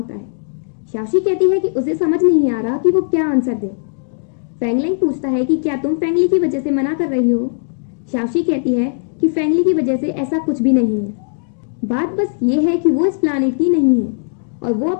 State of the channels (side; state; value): right; silent; digital silence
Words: है। शाओशी कहती है कि उसे समझ नहीं आ रहा कि वो क्या आंसर दे। फेंगलेंग पूछता है कि क्या तुम फेंगली की वजह से मना कर रही हो। शाओशी कहती है कि फेंगली की वजह से ऐसा कुछ भी नहीं है। बात बस ये है कि वो इस प्लानेट की नहीं है और वो